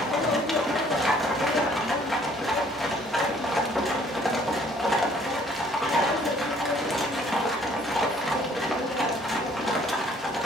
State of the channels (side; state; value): both; normal; correlation 0.59